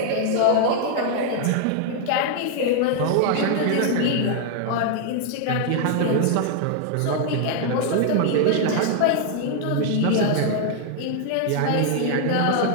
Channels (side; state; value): both; different; correlation 0.00